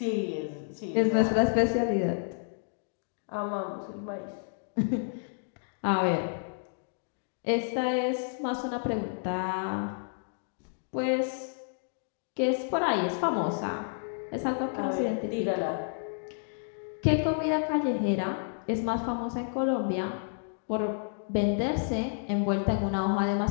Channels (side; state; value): right; silent; digital silence